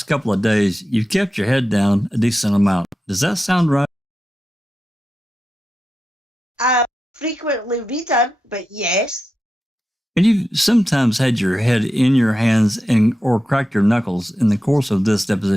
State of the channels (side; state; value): both; normal; correlation 0.90